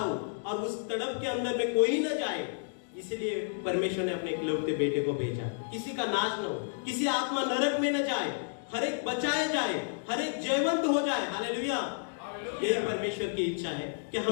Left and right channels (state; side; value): silent; right; digital silence